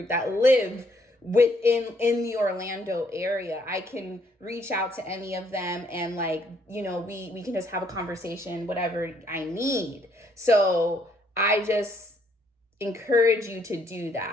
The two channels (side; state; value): both; normal; correlation 0.68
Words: that live in the Orlando area. I can reach out to any of them and, like, you know, we can just have a conversation, whatever I need. So I just encourage you to do